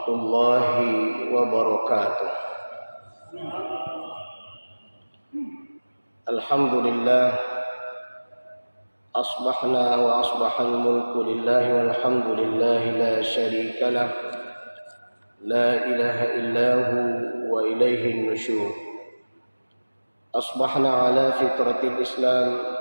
wabarakatuh. Alhamdulillah, asbahna wa asbahal mulku lillahi walhamdulillahi la syarika lah, la ilaha illahu wa ilaihin nusyur. Asbahna ala fitratil Islam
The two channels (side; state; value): both; inverted; correlation -1.00